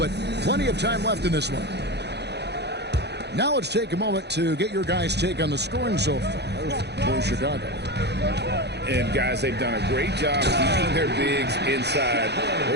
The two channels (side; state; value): left; late; 0.49 ms